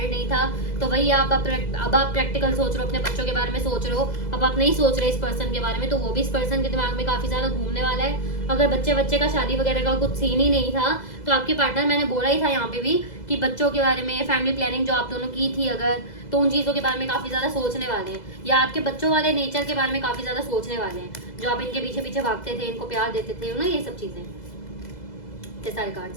नहीं था, तो वही अब आप प्रैक्टिकल सोच रहे हो, अपने बच्चों के बारे में सोच रहे हो, अब आप नहीं सोच रहे इस पर्सन के बारे में, तो वो भी इस पर्सन के दिमाग में काफी ज्यादा घूमने वाला है। अगर बच्चे का शादी वगैरह का कुछ सीन ही नहीं था तो आपके पार्टनर, मैंने बोला ही था यहाँ पे भी कि बच्चों के बारे में, फैमिली प्लानिंग जो आप दोनों की थी अगर, तो उन चीजों के बारे में काफी ज्यादा सोचने वाले हैं, या आपके बच्चों वाले नेचर के बारे में काफी ज्यादा सोचने वाले हैं, जो आप इनके पीछे पीछे भागते थे, इनको प्यार देते थे ना, ये सब चीजें, ये सारे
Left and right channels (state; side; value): late; right; 2.0 ms